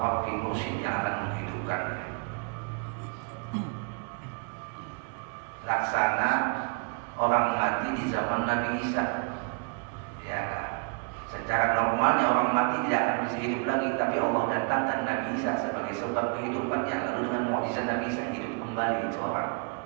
mursyid yang akan menghidupkannya. Laksana orang mati di zaman Nabi Isa. Ya, secara normalnya orang mati tidak akan bisa hidup lagi, tapi Allah datangkan Nabi Isa sebagai sebab kehidupannya. Lalu dengan mukjizat Nabi Isa hidup kembali itu orang.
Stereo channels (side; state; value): left; quieter; 37.4 dB